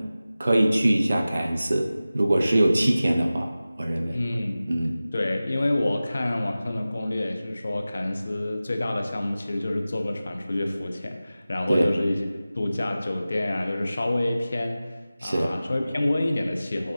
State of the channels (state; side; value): inverted; both; correlation -0.96